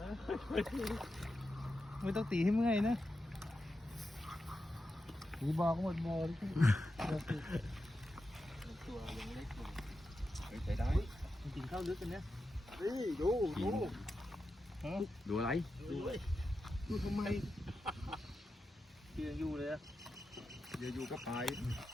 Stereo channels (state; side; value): normal; both; correlation 0.89